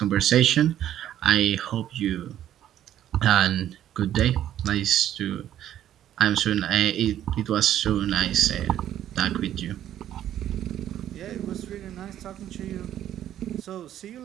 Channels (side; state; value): left; quieter; 11.5 dB